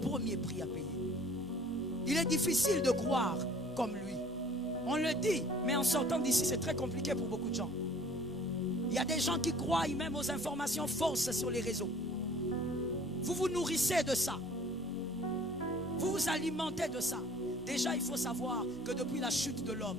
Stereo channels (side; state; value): both; normal; correlation 0.52